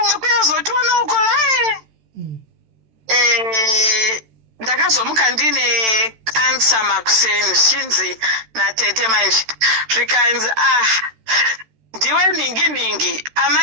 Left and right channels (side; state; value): left; late; 13 ms